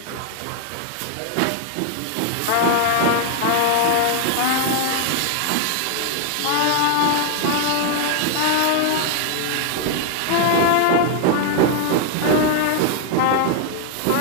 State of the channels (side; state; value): both; different; correlation 0.00